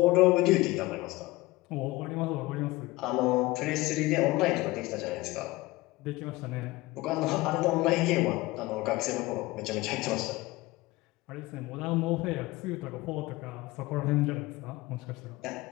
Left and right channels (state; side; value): quieter; right; 20.0 dB